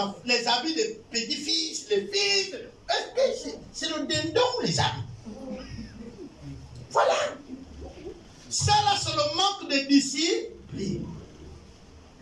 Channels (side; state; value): both; identical; correlation 1.00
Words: habits des petits-fils, les fils. Est-ce que c'est le dindon ou les habits? Voilà. Ça là, c'est le manque de discipline.